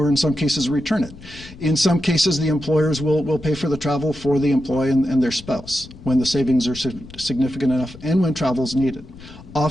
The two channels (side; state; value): left; noise; rumble, 18 dB below the sound